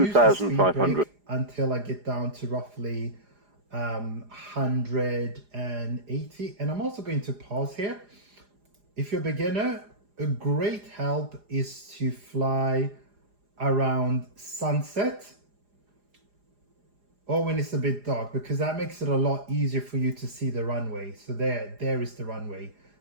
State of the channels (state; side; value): late; left; 4.9 ms